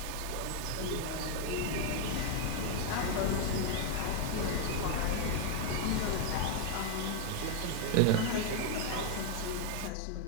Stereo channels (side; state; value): both; different; correlation 0.01